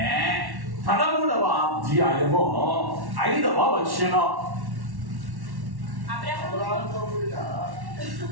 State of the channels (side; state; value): left; late; 1.1 ms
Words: 13వ అధ్యాయము 5వ వచనం.